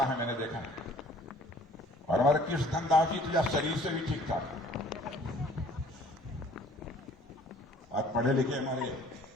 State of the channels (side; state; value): both; normal; correlation 0.54